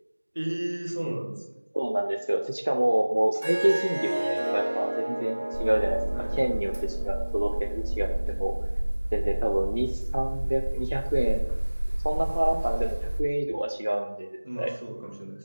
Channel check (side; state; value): both; inverted; correlation -1.00